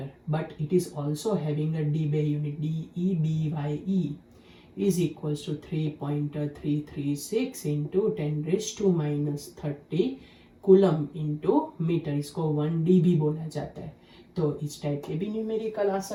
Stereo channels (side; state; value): both; identical; correlation 1.00